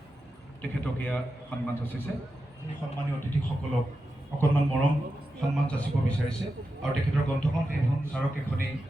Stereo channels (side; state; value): both; normal; correlation 0.90